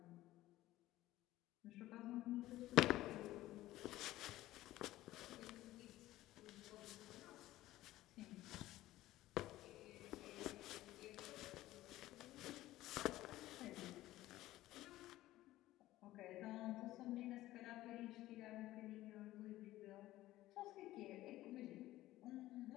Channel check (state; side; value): quieter; right; 15.8 dB